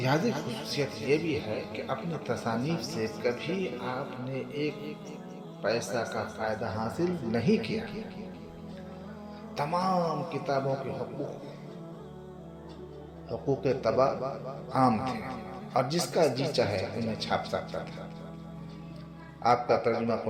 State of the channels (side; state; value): both; identical; correlation 1.00